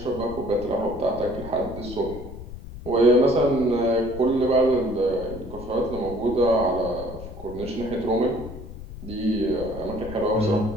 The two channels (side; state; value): left; noise; rumble, 13 dB below the sound